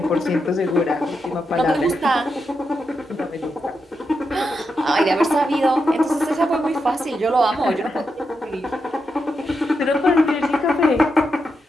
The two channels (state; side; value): normal; both; correlation 0.85